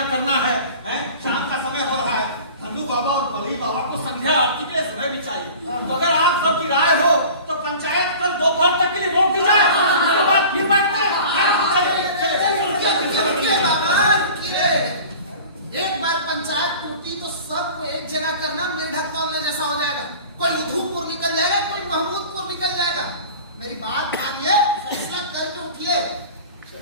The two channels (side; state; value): both; inverted; correlation -0.41